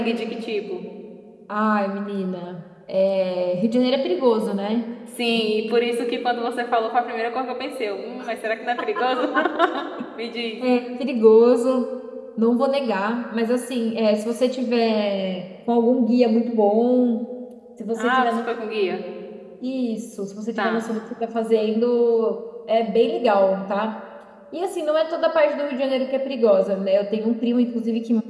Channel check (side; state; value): both; identical; correlation 1.00